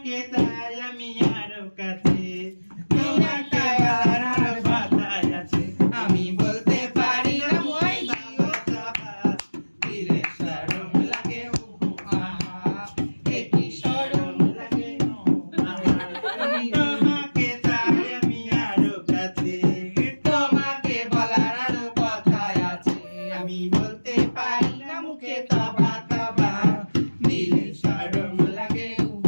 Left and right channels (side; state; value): both; inverted; correlation -1.00